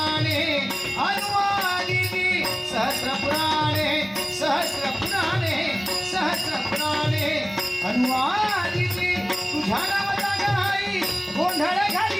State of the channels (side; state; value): both; identical; correlation 1.00